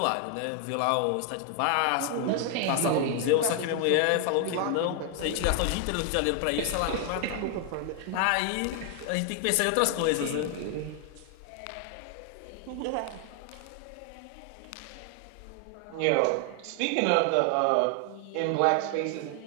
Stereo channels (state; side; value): different; both; correlation 0.00